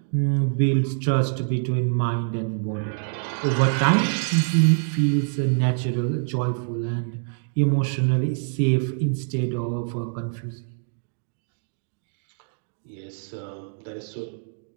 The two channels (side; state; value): left; silent; digital silence